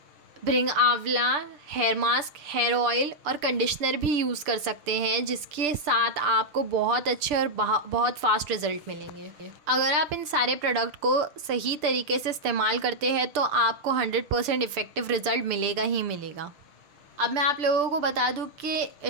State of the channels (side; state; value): left; late; 6.8 ms